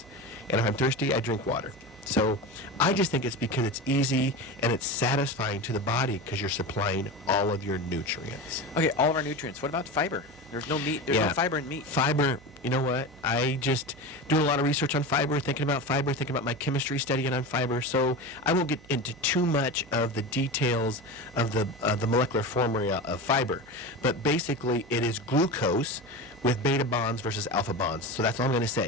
And if I'm thirsty, I drink water. So I just think it's because it's easy and it's satisfying to the body because you're supplying all of your nutrients. Okay, all of our nutrients. What about fiber? There's no meat. There's no fiber in meat. Fiber, you know what? I just do a lot of research on fiber, thinking about my chemistry studying on fiber. So I won't get into too much of the details of the molecular formula of fiber. But basically, it is glucose with beta bonds versus alpha bonds. So that's all I'm going to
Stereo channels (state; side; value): noise; right; hum, 24 dB below the sound